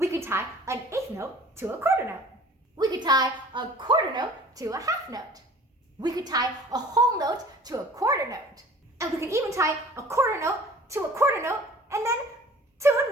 could tie an eighth note to a quarter note. We could tie a quarter note to a half note. We could tie a whole note to a quarter note. And we could even tie a quarter note to a quarter note and then to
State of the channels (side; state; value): both; normal; correlation 0.47